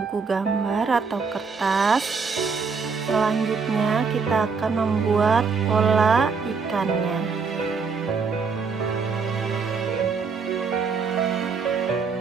gambar atau kertas. Selanjutnya kita akan membuat pola ikannya.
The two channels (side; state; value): left; quieter; 5.1 dB